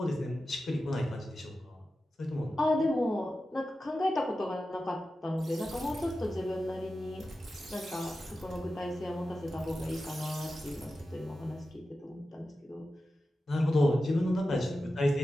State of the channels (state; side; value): normal; both; correlation 0.92